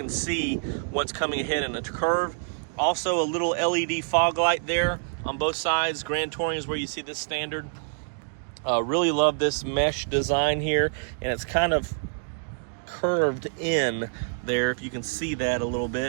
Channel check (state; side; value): silent; left; digital silence